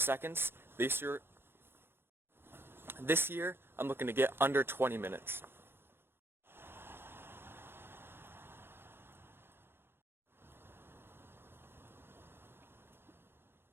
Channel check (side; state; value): left; late; 0.11 ms